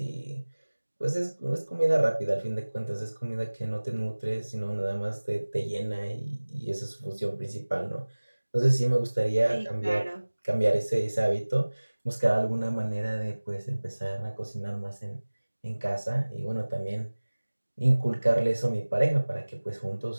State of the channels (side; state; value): both; inverted; correlation -1.00